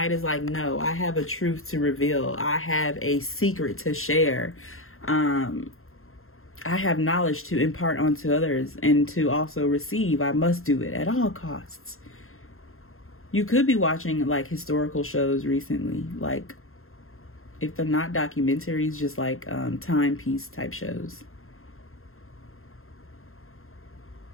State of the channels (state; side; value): late; right; 0.61 ms